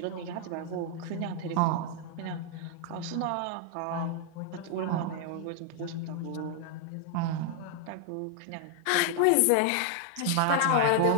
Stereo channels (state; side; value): different; both; correlation 0.00